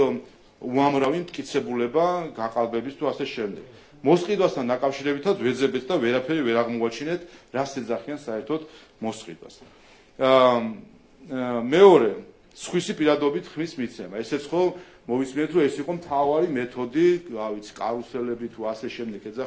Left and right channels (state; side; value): identical; both; correlation 1.00